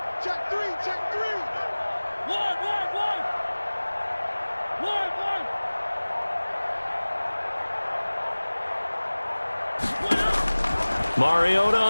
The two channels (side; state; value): both; inverted; correlation -1.00